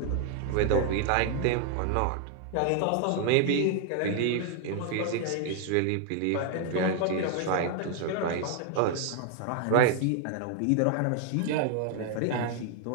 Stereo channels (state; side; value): different; both; correlation 0.00